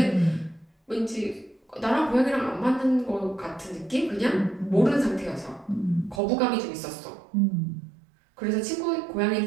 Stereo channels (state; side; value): drops out; left; at 6.2 s